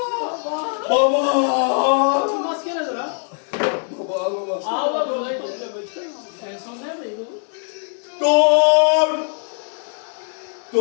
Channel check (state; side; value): silent; right; 56 dB below the other